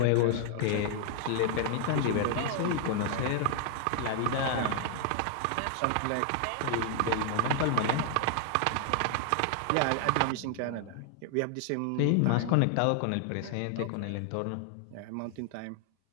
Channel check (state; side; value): different; both; correlation 0.00